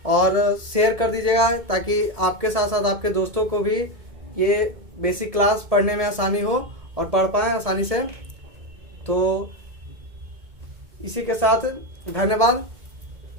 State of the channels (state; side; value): late; left; 1.8 ms